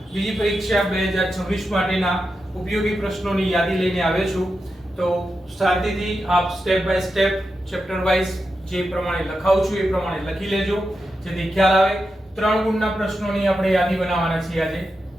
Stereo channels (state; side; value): normal; both; correlation 0.89